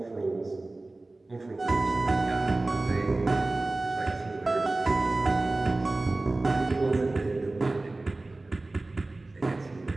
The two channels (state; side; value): quieter; left; 3.0 dB